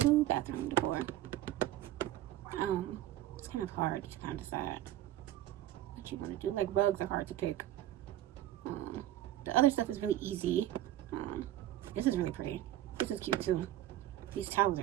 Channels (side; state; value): left; quieter; 13.4 dB